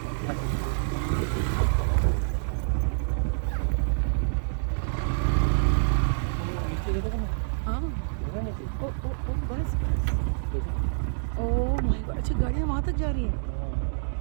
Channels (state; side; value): silent; left; digital silence